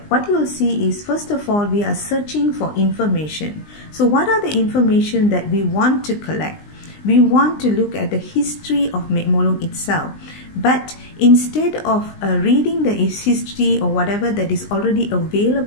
what you will see is, first of all, we are searching for information. So what are the information that we want to collect? We want to look at the history of Mek Mulung itself. But instead of reading the history or whatever that is already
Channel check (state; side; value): late; right; 20 ms